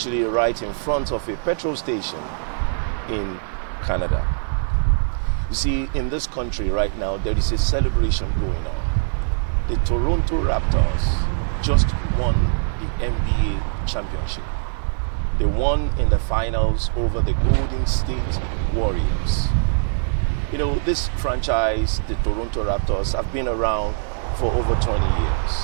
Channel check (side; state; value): left; silent; 64 dB below the other